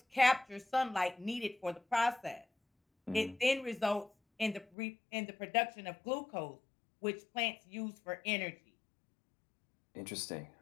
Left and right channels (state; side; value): drops out; right; at 4.7 s